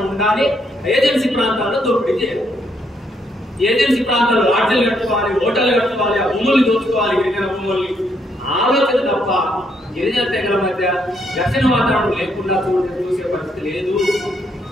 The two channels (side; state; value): both; normal; correlation 0.74